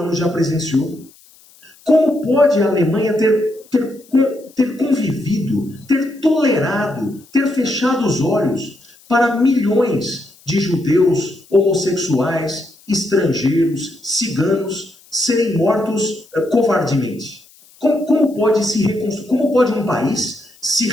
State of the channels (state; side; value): noise; left; hiss, 27 dB below the sound